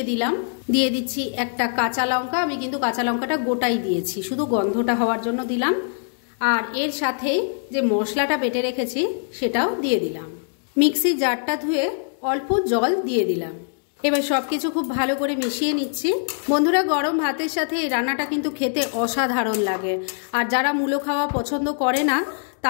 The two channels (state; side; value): silent; right; digital silence